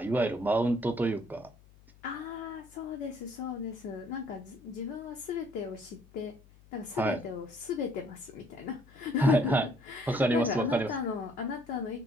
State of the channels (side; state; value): left; noise; hum, 25 dB below the sound